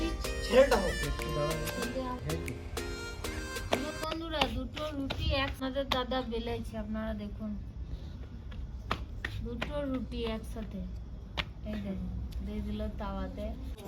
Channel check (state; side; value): identical; both; correlation 1.00